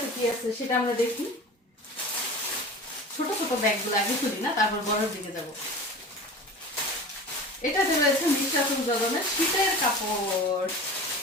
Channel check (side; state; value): both; normal; correlation 0.35